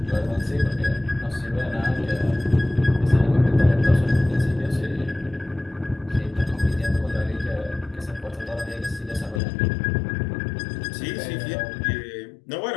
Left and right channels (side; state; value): right; drops out; at 9.4 s